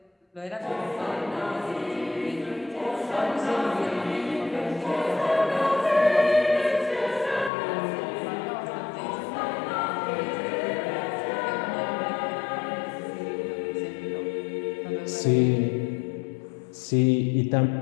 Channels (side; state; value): right; drops out; at 7.5 s